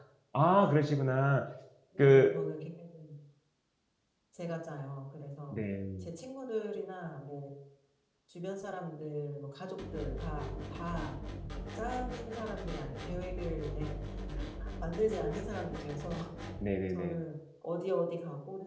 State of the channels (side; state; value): both; identical; correlation 1.00